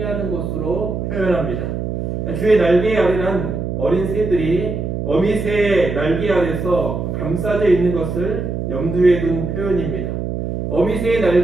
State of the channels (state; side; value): noise; right; hum, 3 dB below the sound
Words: 것으로 표현합니다. 주의 날개 아래란 어린 새들이 어미새의 날개 아래서 감싸져 있는 것을 염두에 둔 표현입니다. 어미새의